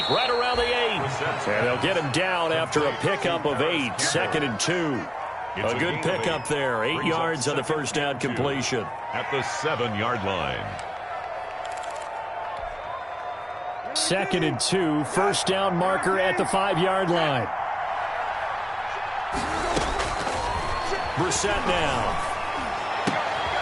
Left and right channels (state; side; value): identical; both; correlation 1.00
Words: right around the 8. And they'll get him down after a pickup of 8. 2nd and 2. A good pickup there. 8 yards on the first down completion. At the 7-yard line. 2nd and 2. First down marker at the 5-yard line. Brissett now.